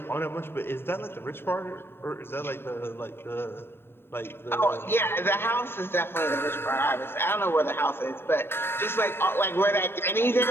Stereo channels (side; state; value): right; late; 0.11 ms